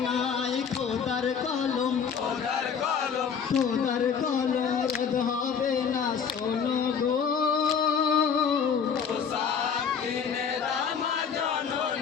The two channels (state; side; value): quieter; right; 6.7 dB